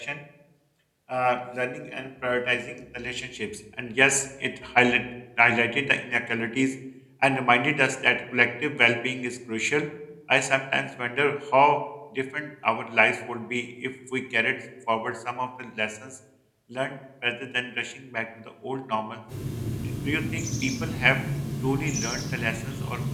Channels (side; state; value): both; identical; correlation 1.00